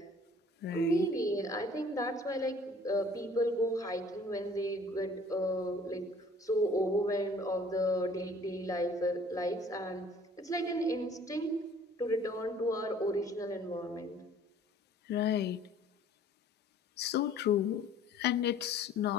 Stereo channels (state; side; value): normal; both; correlation 0.53